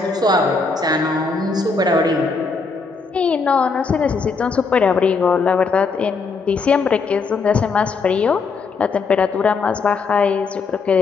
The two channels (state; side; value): quieter; right; 4.6 dB